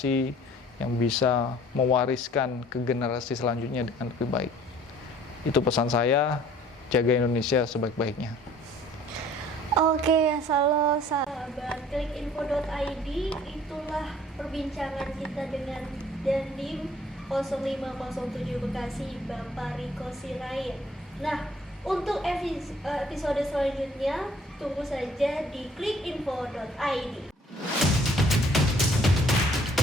yang bisa mewariskan ke generasi selanjutnya dengan lebih baik. Itu pesan saya, jaga Indonesia sebaik-baiknya. Oke, halo sahabat klikinfo.id, itulah perbincangan kita dengan Dandim 0507 Bekasi, Bapak Riko Sirait. Nah, untuk episode selanjutnya, tunggu saja di klikinfo.id.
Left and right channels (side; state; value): both; normal; correlation 0.55